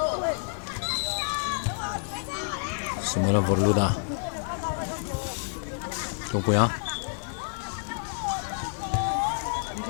Samuelan Vorluda long puya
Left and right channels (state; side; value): silent; right; digital silence